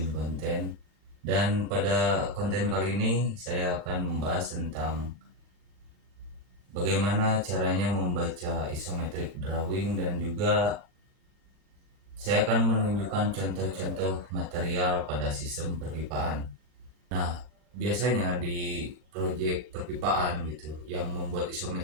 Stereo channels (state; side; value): late; left; 39 ms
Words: konten. Dan pada konten kali ini saya akan membahas tentang bagaimana caranya membaca isometric drawing, dan juga saya akan menunjukkan contoh-contoh material pada sistem perpipaan. Nah, biasanya di proyek perpipaan gitu, yang membuat